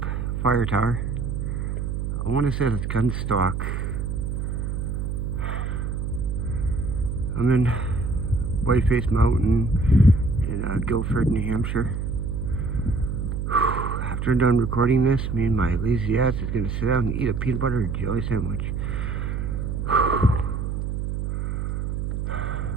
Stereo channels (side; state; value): right; noise; hum, 2 dB below the sound